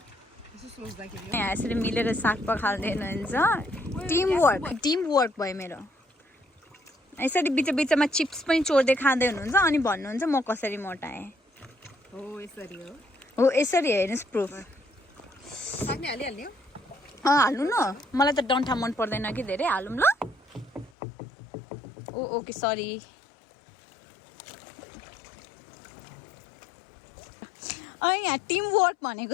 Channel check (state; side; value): drops out; right; at 20.9 s